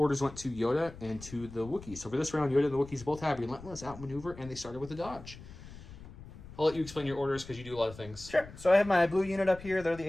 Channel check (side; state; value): left; noise; rumble, 16 dB below the sound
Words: went to Yoda and to the Wookiees. So for this round, Yoda and the Wookiees both have relentless outmaneuver, and they started with a dodge. I'll let you explain your orders because you do a lot of things. Sure. So I have my blue unit up here. They're